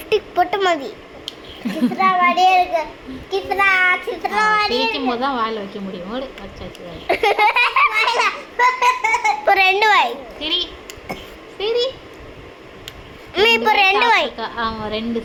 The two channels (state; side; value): identical; both; correlation 1.00